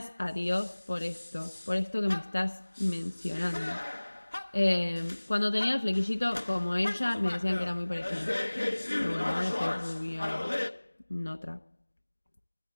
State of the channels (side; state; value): both; inverted; correlation -1.00